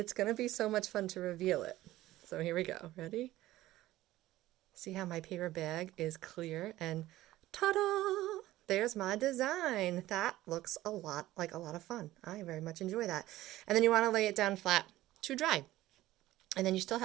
going to be so much fun to reveal it. So here we go. Ready? See how my paper bag is clear, and ta-da! There's my design. That looks a lot like a lot of fun. I very much enjoy that. And then you want to lay it down flat to dry. And then you still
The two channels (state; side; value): quieter; left; 15.8 dB